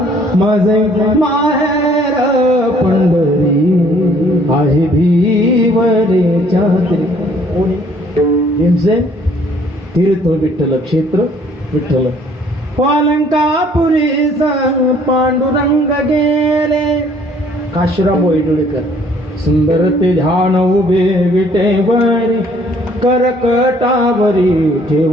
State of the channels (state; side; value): normal; both; correlation 0.60